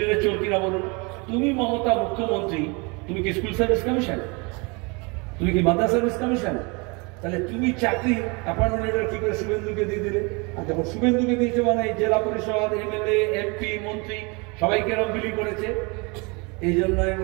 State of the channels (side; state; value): left; quieter; 29.4 dB